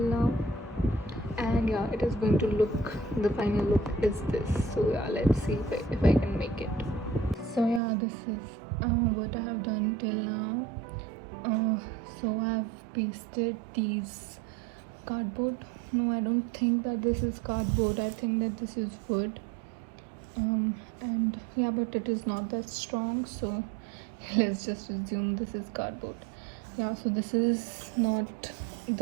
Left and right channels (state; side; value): drops out; left; at 7.8 s